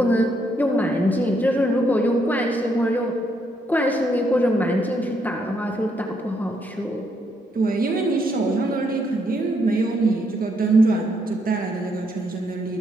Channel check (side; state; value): both; normal; correlation 0.75